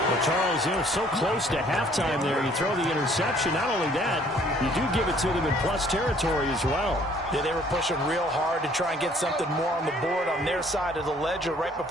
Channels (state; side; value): normal; both; correlation 0.59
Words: Well, Charles, you know, so close to halftime there. You throw the interception. Not only that, you do give it to them in plus territory as well. Yeah, they were pushing real hard to try and get something more on the board on their side of the ledger right